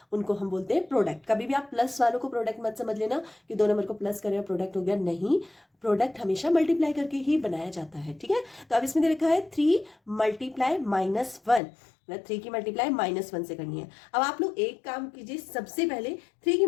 उनको हम बोलते हैं प्रोडक्ट। कभी भी आप प्लस वालों को प्रोडक्ट मत समझ लेना कि दो नंबर को प्लस करें प्रोडक्ट हो गया, नहीं, प्रोडक्ट हमेशा मल्टीप्लाई करके ही बनाया जाता है। ठीक है, तो अब इसमें दे रखा है 3 मल्टीप्लाई -1, मतलब 3 की मल्टीप्लाई -1 से करनी है। अब आप लोग एक काम कीजिए, सबसे पहले 3 की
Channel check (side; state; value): right; drops out; at 11.6 s